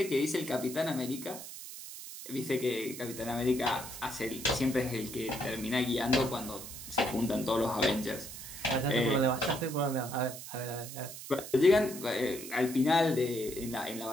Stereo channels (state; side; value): noise; right; hiss, 11 dB below the sound